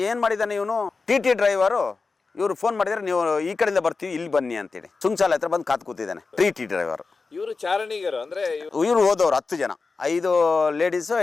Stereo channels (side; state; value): right; quieter; 4.2 dB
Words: ಏನ್ ಮಾಡಿದಾನೆ ಇವನು, ಟಿ ಡ್ರೈವರು. ಇವರು ಫೋನ್ ಮಾಡಿದ್ರೆ, ನೀವು ಈ ಕಡೆಯಿಂದ ಬರ್ತೀವಿ, ಇಲ್ಲಿ ಬನ್ನಿ ಅಂತೇಳಿ ಸುಂಚಾಲೆ ಹತ್ರ ಬಂದು ಕಾತ್ ಕೂತಿದ್ದಾನೆ ಟಿ ಡ್ರೈವರ್. ಇವರು ಚಾರಣಿಗರು ಅಂದ್ರೆ ಇವರು ಹೋದವ್ರು 10 ಜನ, 5 ಲೇಡೀಸು